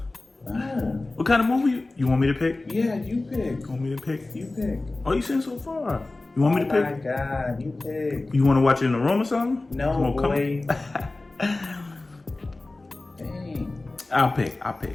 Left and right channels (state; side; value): quieter; right; 3.1 dB